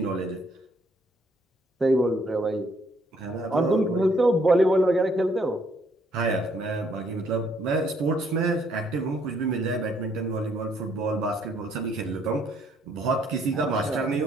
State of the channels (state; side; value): normal; both; correlation 0.67